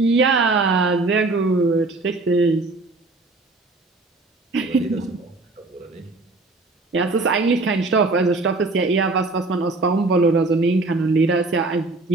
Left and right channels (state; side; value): quieter; left; 3.3 dB